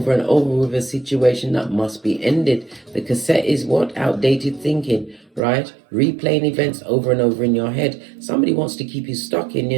and over with a situation that must be ended. The cassette is what? Outdated thinking, right? Replaying events over and over in your head. Somebody wants to keep you stuck in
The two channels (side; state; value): left; drops out; at 5.4 s